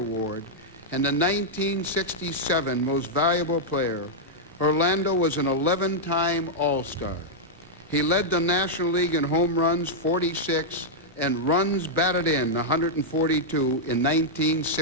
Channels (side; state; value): both; normal; correlation -0.05